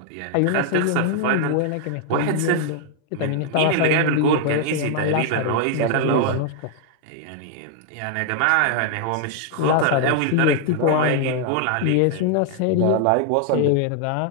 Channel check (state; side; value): different; both; correlation 0.00